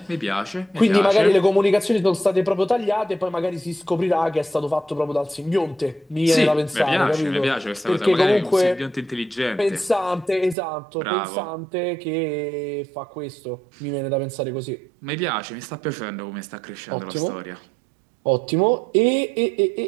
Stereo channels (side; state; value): left; drops out; at 10.6 s